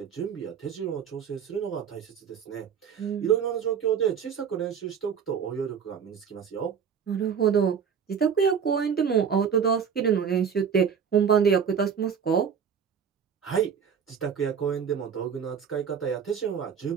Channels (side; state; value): left; quieter; 7.2 dB